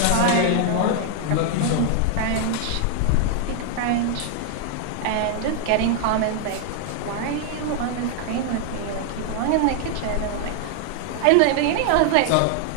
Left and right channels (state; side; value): different; both; correlation 0.00